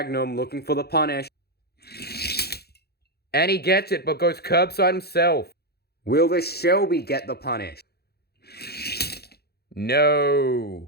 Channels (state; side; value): late; right; 0.46 ms